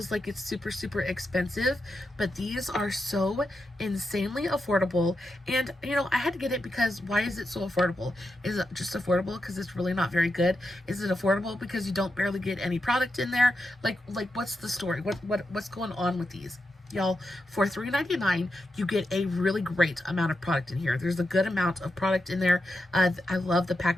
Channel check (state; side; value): normal; both; correlation 0.87